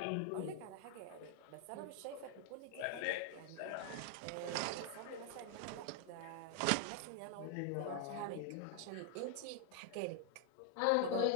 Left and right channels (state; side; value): different; both; correlation 0.00